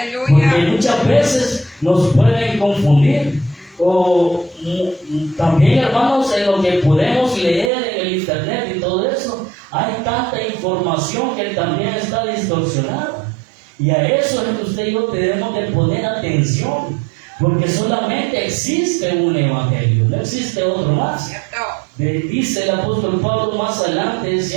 Porque muchas veces nos pueden confundir. O también, hermanos, en lo que podemos leer en el internet y todo eso, hay tanta información que también está distorsionada. Y a eso es que usted y yo debemos de poner atención. Porque solamente existe un evangelio, no existe otro más. Dice el apóstol Pablo más adelante,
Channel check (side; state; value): left; drops out; at 7.7 s